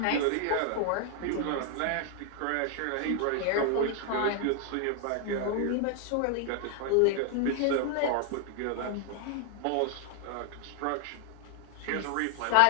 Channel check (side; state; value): both; different; correlation 0.00